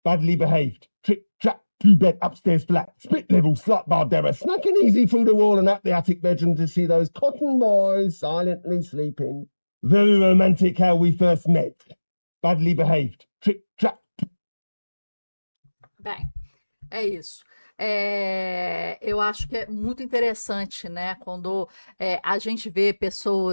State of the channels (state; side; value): inverted; both; correlation -1.00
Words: Badly behaved. Trick, trap, 2-bed upstairs flat. Split level, slut Bardera. Snacking easy through the wall and up the attic bedroom to see those cotton boys silently sleeping. Very romantic how we first met. Badly behaved. Trick, trap. Bem, é isso. Eu acho que é muito interessante, né? Quando a gente vê